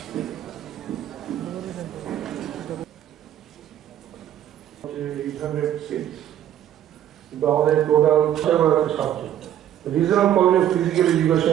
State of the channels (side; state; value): left; quieter; 11.2 dB